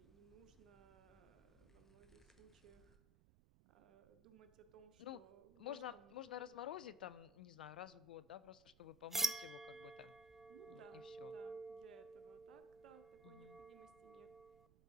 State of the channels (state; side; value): noise; right; rumble, 23 dB below the sound